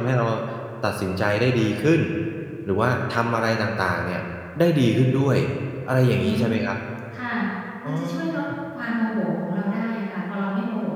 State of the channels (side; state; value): both; identical; correlation 1.00